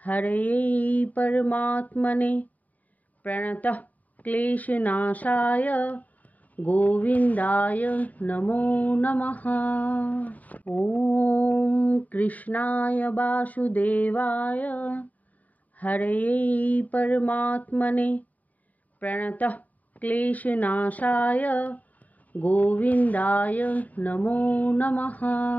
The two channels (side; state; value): right; late; 0.075 ms